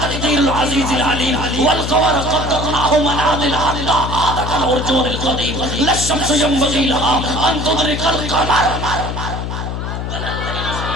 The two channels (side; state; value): left; noise; hum, 4 dB below the sound